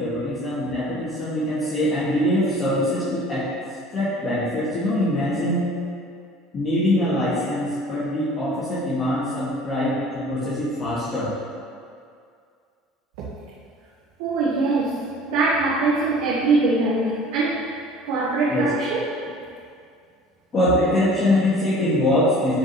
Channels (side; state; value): both; normal; correlation 0.48